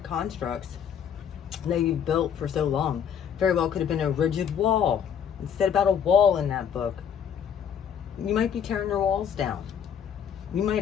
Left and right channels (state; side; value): quieter; right; 8.1 dB